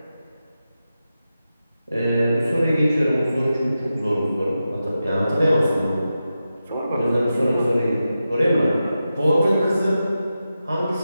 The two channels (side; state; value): both; inverted; correlation -0.91